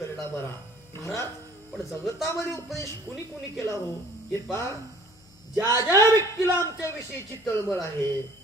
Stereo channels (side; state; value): left; noise; hum, 28 dB below the sound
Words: बरा. महाराज पण जगतामध्ये उपदेश कुणी कुणी केला हो हे पहा. ज्या ज्या व्यक्तीला आमच्या विषयीची तळमळ आहे